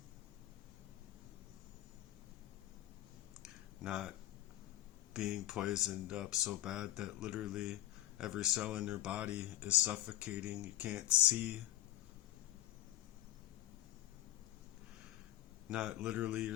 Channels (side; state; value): right; quieter; 15.1 dB